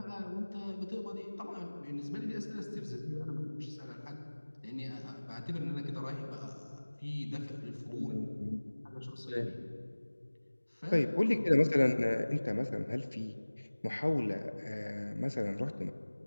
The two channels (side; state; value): both; inverted; correlation -1.00